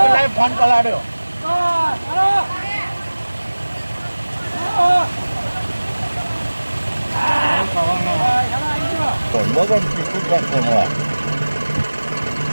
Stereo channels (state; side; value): inverted; both; correlation -1.00